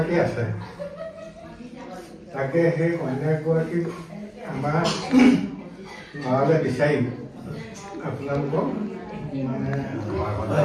আছে, তাকে সেই কন্যা এগৰাকী আমাৰ ঘৰলৈ বিচাৰি আপোনালোকক মানে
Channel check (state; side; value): identical; both; correlation 1.00